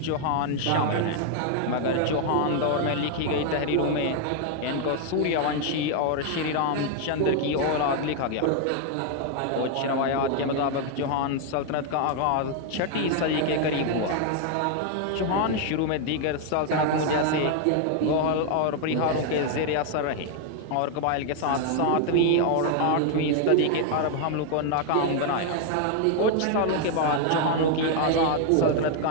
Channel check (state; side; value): different; both; correlation 0.00